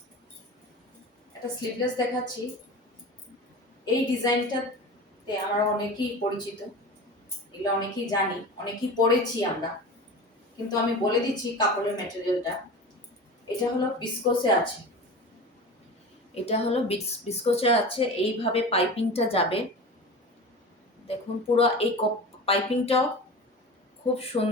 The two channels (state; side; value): normal; both; correlation 0.32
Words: একটা স্লিভলেস দেখাচ্ছি। এই ডিজাইনটাতে আমরা অনেকেই পরিচিত, এগুলো অনেকেই জানি, অনেকেই পরেছি আমরা, কিন্তু আমি বলে দিচ্ছি কাপড়ের ম্যাটেরিয়ালটা। এটা হলো বিস্কোসে আছে। এটা হলো বিস্কোসে আছে। এইভাবে পাইপিংটা যাবে, দেখুন পুরো এই পাইপিংটাও খুব